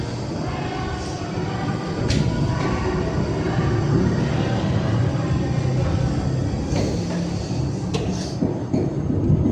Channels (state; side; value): identical; both; correlation 1.00